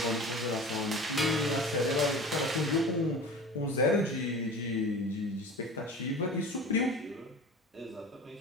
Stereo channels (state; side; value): normal; both; correlation 0.37